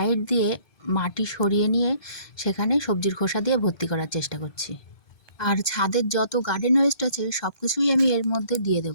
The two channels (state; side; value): late; right; 1.2 ms